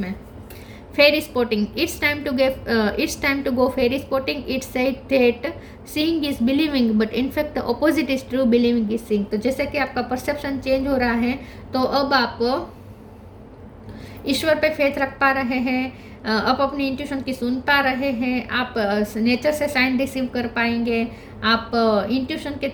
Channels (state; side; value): identical; both; correlation 1.00